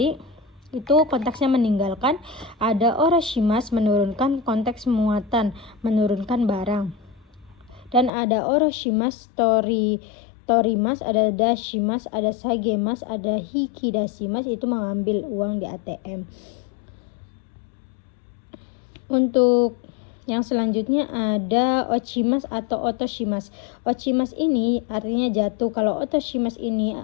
itu konteksnya meninggalkan. Ada oroshimas, menurunkan, konteks muatan, menurunkan barang. Dan ada oroshimas, torimas, ada dashimas, ada sagemas, ada hikidashimas, itu mengambil uang di ATM. Untuk yang selanjutnya ada ochimas atau otoshimas. Ochimas ini artinya jatuh, kalau otoshimas ini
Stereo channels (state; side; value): drops out; right; at 8.1 s